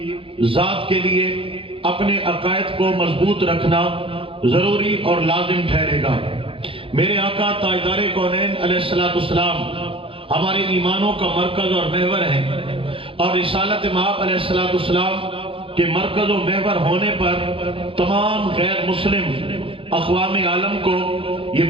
ذات کے لیے اپنے عقائد کو مضبوط رکھنا ضروری اور لازم ٹھہرے گا۔ میرے آقا تاجدار کونین علیہ السلام ہمارے ایمانوں کا مرکز اور محور ہے، اور رسالت مآب علیہ السلام کے مرکز و محور ہونے پر تمام غیر مسلم اقوام عالم کو یہ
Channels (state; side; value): late; left; 0.26 ms